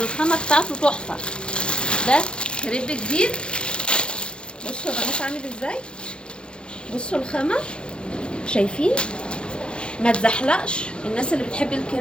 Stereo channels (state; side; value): late; right; 0.054 ms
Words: بتاعته تحفه. ده كريب جديد. بصوا يا بنات عامل ازاي. بصوا الخامه، شايفين؟ ما تزحلقش. الناس اللي بتحب